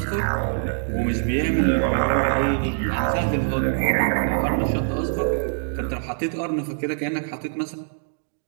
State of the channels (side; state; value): left; silent; digital silence